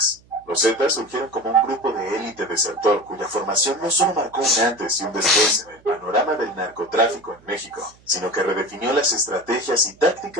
Los Zetas surgieron como un grupo de élite desertor cuya formación no solo marcó un antes y un después en el panorama del narcotráfico en México, sino que redefinió las estrategias y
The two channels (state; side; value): noise; right; hum, 29 dB below the sound